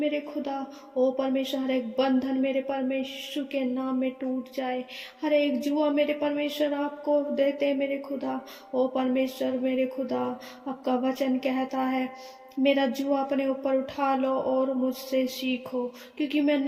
खुदा, ओ परमेश्वर हर एक बंधन मेरे परमेश्वर के नाम में टूट जाए। हर एक जुआ मेरे परमेश्वर आपको देते मेरे खुदा। ओ परमेश्वर मेरे खुदा, आपका वचन कहता है मेरा जुआ अपने ऊपर उठा लो और मुझसे सीखो, क्योंकि मैं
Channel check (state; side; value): identical; both; correlation 1.00